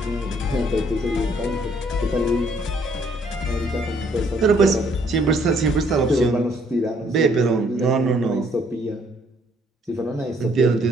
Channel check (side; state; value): both; normal; correlation 0.65